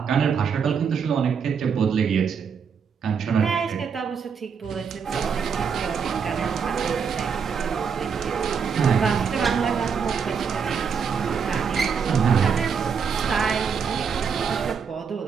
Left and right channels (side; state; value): left; quieter; 6.4 dB